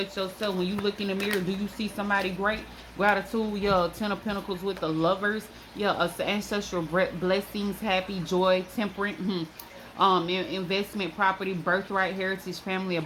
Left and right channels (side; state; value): both; identical; correlation 1.00